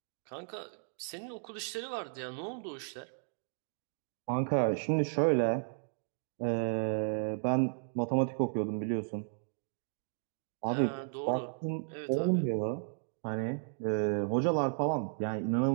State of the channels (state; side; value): silent; left; digital silence